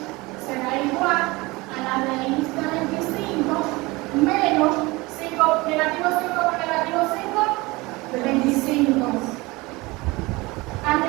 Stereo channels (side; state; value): left; quieter; 22.8 dB